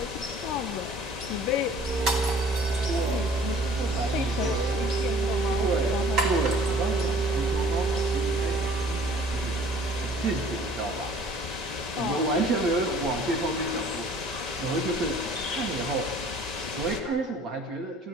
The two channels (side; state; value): both; normal; correlation 0.52